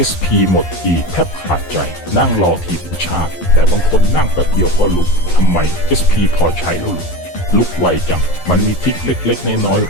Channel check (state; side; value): late; right; 12 ms